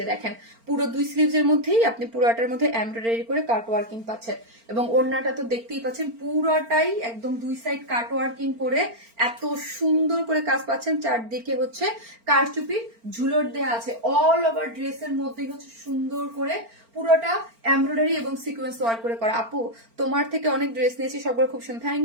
দেখেন পুরো 2 স্লিভস এর মধ্যেই আপনি পুরোটার মধ্যে এমব্রয়ডারি করে কাট ওয়ার্কিং পাচ্ছেন, এবং ওড়নাটা তো দেখতেই পাচ্ছেন পুরোটাই একদম 2 সাইড কাট ওয়ার্কিং করে এত সুন্দর করে কাজ পাচ্ছেন। চারদিকে হচ্ছে কারচুপি ঝুলট দেয়া আছে, অল ওভার ড্রেসের মধ্যেই হচ্ছে সুন্দর করে পুরোটা এমব্রয়ডারি এবং সিকোয়েন্স ওয়ার্ক করে করা। আপু তোমার থেকে অনেক ড্রেস নিয়েছি, সবগুলো খুব সুন্দর,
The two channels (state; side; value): late; left; 4.4 ms